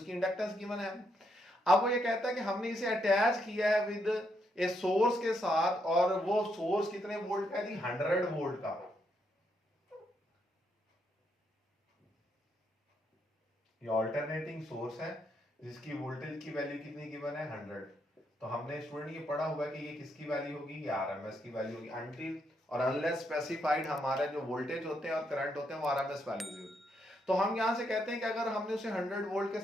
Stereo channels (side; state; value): both; normal; correlation 0.78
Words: इंडक्टेंस गिवन है। अब वो ये कहता है कि हमने इसे अटैच किया है विद ए सोर्स के साथ, और वो सोर्स कितने वोल्ट का है, 100 वोल्ट का। ये अल्टरनेटिंग सोर्स है जिसकी वोल्टेज की वैल्यू कितनी गिवन है 100। तो हमने स्टूडेंट ये पढ़ा हुआ कि ये किसकी वैल्यू होगी, ये आरएमएस की वैल्यू होगी। अंटिल और अनलेस स्पेसिफाइड हमारे जो वोल्टेज होते हैं और करंट होते हैं वो आरएमएस वैल्यूज होती है। तो हम यहां से कहते हैं कि अगर हमने उसे 100 वोल्ट के